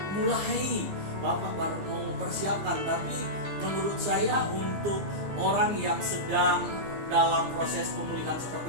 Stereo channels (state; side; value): late; left; 15 ms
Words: mulai, Bapak baru mau mempersiapkan, tapi menurut saya untuk orang yang sedang dalam proses pemulihan